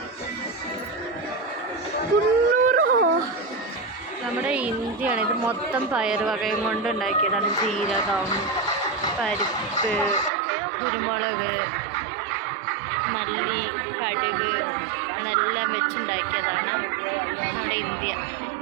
നമ്മുടെ ഇന്ത്യയാണ്. ഇത് മൊത്തം പയർ വകയും കൊണ്ട് ഉണ്ടാക്കിയതാണ്. ജീരകം, പരിപ്പ്, കുരുമുളക്, മല്ലി, കടുക് അതെല്ലാം വെച്ചുണ്ടാക്കിയതാണ് നമ്മുടെ ഇന്ത്യ.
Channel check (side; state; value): left; drops out; at 10.3 s